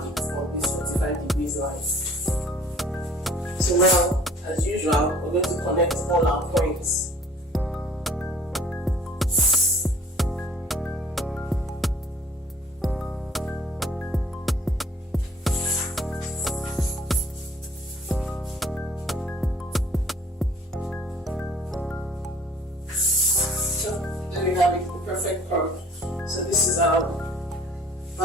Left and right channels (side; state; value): both; normal; correlation 0.52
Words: it on this 45 degrees line. So now, as usual, we're going to connect all our points. So there we have it, the perfect curve. So this is our